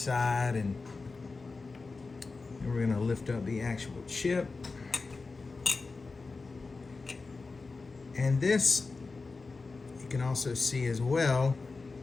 and we're gonna lift up the actual chip. And this, you can also see as well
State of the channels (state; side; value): quieter; right; 4.0 dB